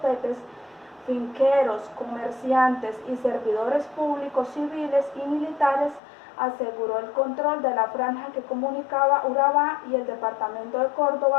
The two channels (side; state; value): right; drops out; at 6.0 s